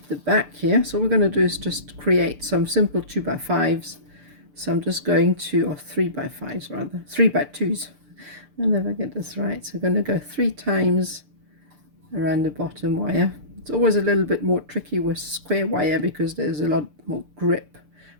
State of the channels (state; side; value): late; left; 6.8 ms